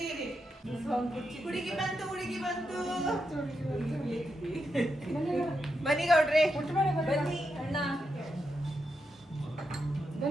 ಇರಿ ಹುಡುಗಿ ಬಂತು ಬನ್ನಿ ಗೌಡ್ರೆ ಬನ್ನಿ ಅಣ್ಣ.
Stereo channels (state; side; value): normal; both; correlation 0.85